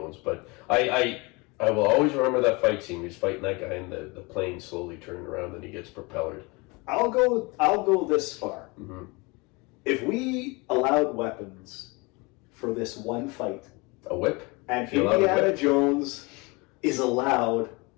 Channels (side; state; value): right; quieter; 26.2 dB